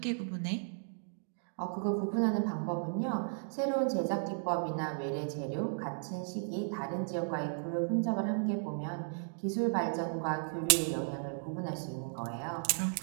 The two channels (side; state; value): left; silent; digital silence